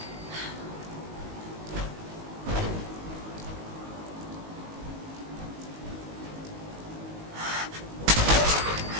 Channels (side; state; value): left; late; 19 ms